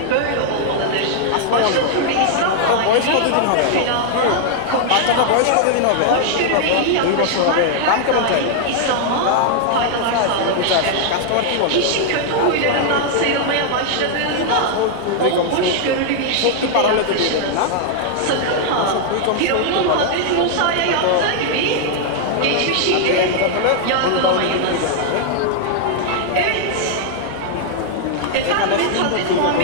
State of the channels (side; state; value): both; different; correlation -0.01